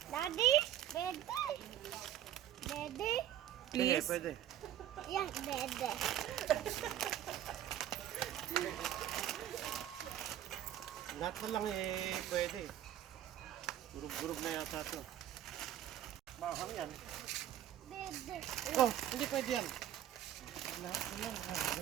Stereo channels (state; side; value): quieter; left; 11.6 dB